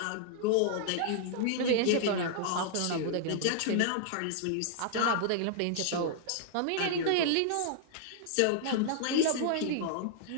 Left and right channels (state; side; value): different; both; correlation -0.01